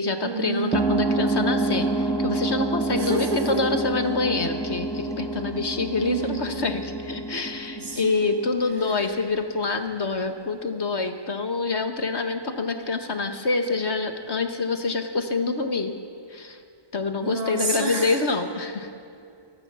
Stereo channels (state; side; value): late; right; 1.1 ms